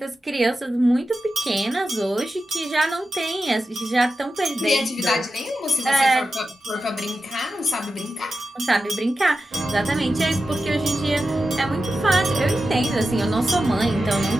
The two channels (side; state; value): both; normal; correlation 0.91